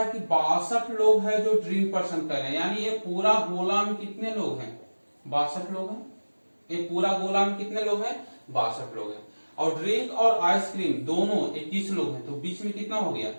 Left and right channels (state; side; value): inverted; both; correlation -1.00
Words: कि 62 लोग हैं जो ड्रिंक पसंद कर रहे हैं, यानी ये पूरा गोला में कितने लोग हैं, 62 लोग हैं। ये पूरा गोला में कितने लोग हैं, 62 लोग हैं। और ड्रिंक और आइसक्रीम दोनों 21 लोग हैं, तो बीच में कितना हो गया,